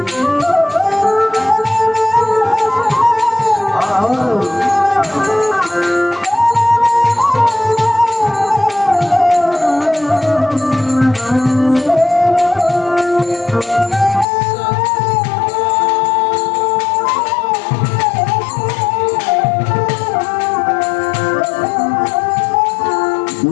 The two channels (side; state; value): right; drops out; at 14.2 s